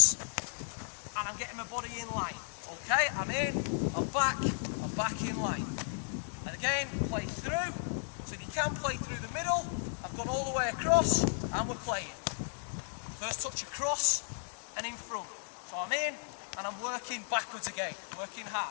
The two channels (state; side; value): silent; right; digital silence